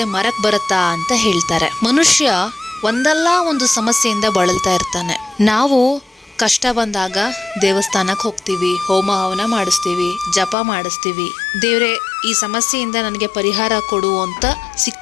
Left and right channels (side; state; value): right; drops out; at 10.6 s